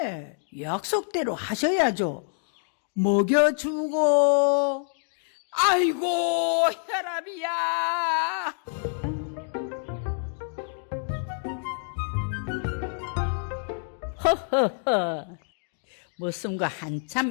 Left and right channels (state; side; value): silent; right; digital silence